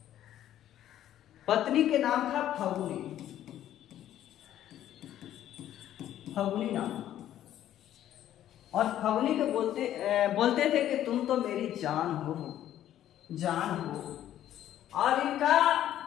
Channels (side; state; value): right; quieter; 11.9 dB